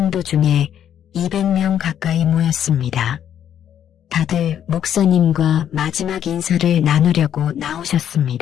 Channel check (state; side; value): quieter; right; 9.8 dB